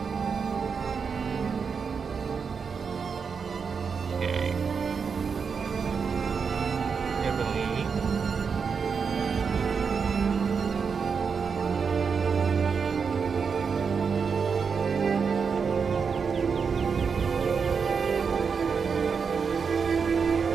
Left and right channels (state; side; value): quieter; left; 5.8 dB